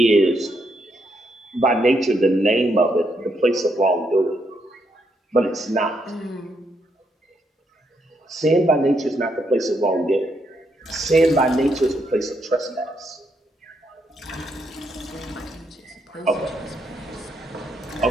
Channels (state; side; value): normal; both; correlation 0.77